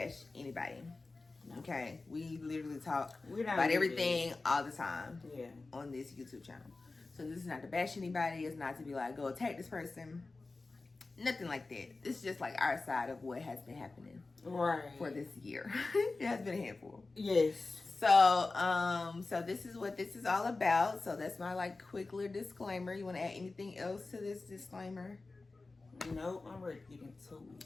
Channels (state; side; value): quieter; right; 3.5 dB